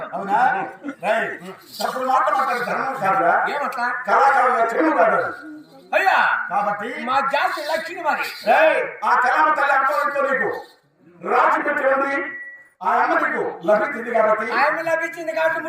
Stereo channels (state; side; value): identical; both; correlation 1.00